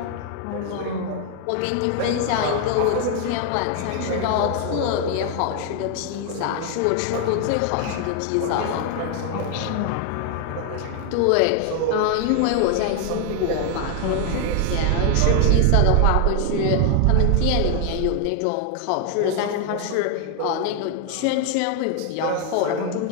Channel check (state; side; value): different; both; correlation 0.00